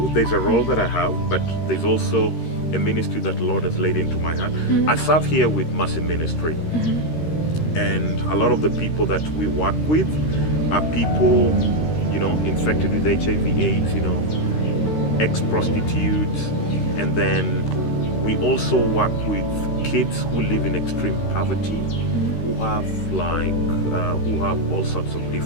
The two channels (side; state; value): right; late; 13 ms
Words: there's a role that I have, but there's also a ministry that the Lord has laid into my heart. I serve here with Mercy Ministry. And a lot of the people that we work with are people, infected with HIV/AIDS, ex-prostitutes, and then we also work with kids who live in extreme poverty, who have all sorts of